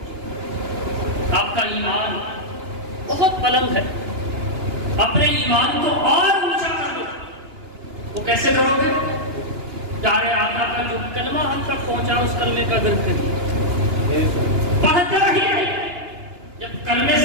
آپ کا ایمان بہت بلند ہے، اپنے ایمان کو اور اونچا کر دو۔ وہ کیسے کرو گے؟ پیارے آقا کا جو کلمہ ہم تک پہنچا اس کلمے کا ورد کریے، پڑھتے رہیے۔ جب کلمے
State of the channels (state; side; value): late; left; 2.9 ms